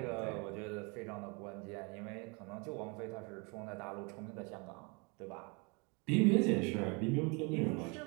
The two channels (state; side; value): quieter; left; 31.2 dB